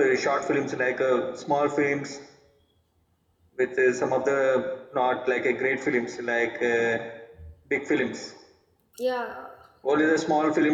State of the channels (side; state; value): both; identical; correlation 1.00